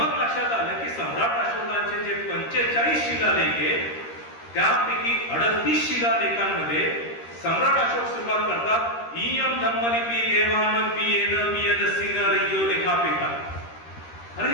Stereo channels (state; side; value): late; right; 13 ms